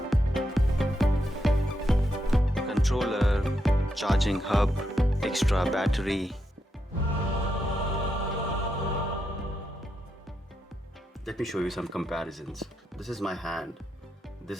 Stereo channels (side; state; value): both; normal; correlation 0.83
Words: Controller, charging hub, extra battery. Let me show you some comparisons. This is my hand.